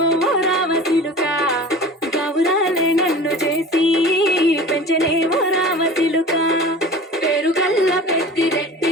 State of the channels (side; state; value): both; normal; correlation 0.39